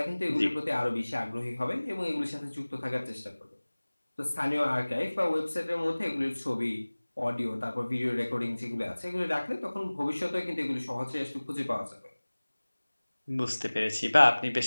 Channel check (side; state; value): both; inverted; correlation -1.00